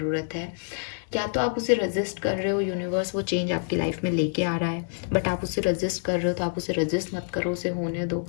है। या तो आप उसे रजिस्ट कर रहे हो, यूनिवर्स वो चेंज आपकी लाइफ में लेके आ रहा है, बट आप उसे रजिस्ट कर रहे हो तो आप उसे रजिस्ट मत करो, उसे होने दो।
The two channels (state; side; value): silent; right; digital silence